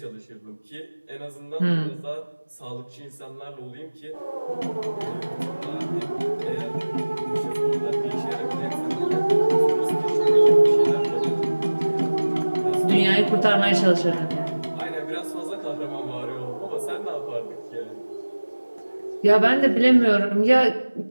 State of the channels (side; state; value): both; inverted; correlation -1.00